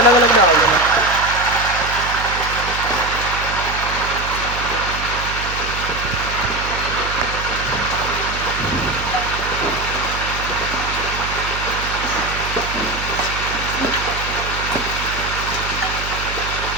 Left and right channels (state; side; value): noise; right; hum, 8 dB below the sound